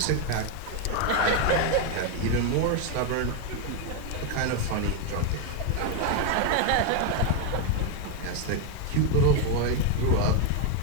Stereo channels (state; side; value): different; both; correlation 0.01